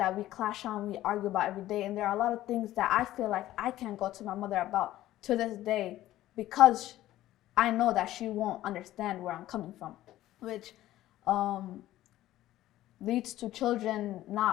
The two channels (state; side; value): quieter; right; 14.6 dB